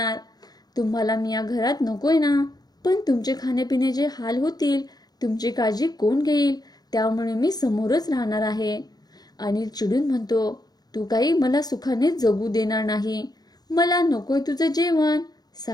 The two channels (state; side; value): late; right; 0.19 ms